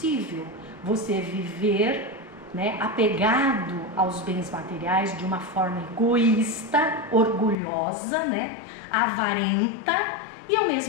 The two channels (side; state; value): right; drops out; at 7.6 s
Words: você viver, né, apegado aos bens materiais de uma forma egoísta, orgulhosa, né, avarenta, e ao